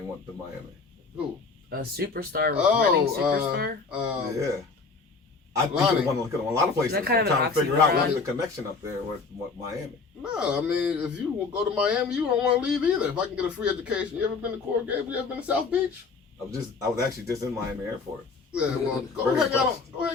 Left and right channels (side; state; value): right; quieter; 4.5 dB